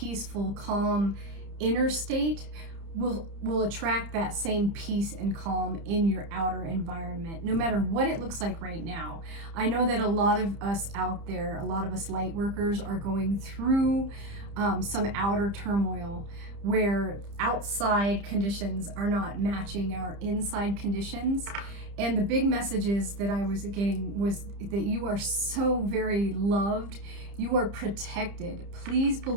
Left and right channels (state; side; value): late; left; 30 ms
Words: calm inner state will attract that same peace and calm in your outer environment, no matter what it looks like right now. I know that a lot of us out there, a lot of us light workers are going through some outer turmoil where outside conditions are not matching our inside conditions. And the big messages that I was getting was that you are so very loved. You are protected. Please